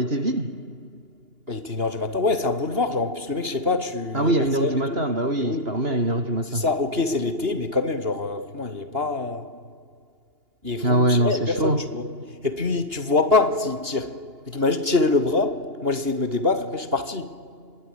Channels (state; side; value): late; left; 2.8 ms